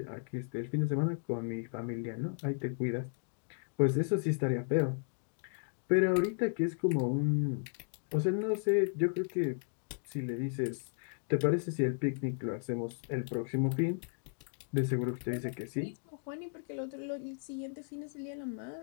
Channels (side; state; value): right; silent; digital silence